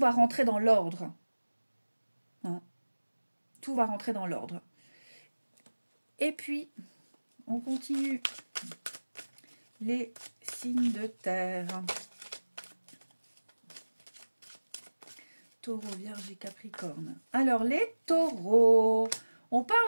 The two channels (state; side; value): inverted; both; correlation -1.00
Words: rentrer dans l'ordre. Hein? Tout va rentrer dans l'ordre. Et puis, on continue. Les signes de terre. Taureau, Vierge et Capricorne. Alors, les taureaux... On